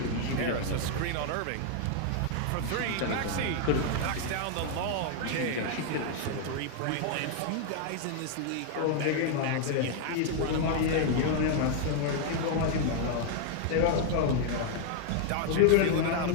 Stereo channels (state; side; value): different; both; correlation 0.00